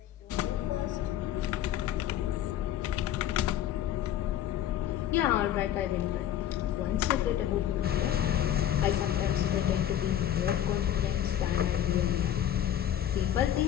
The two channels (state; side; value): quieter; right; 11.1 dB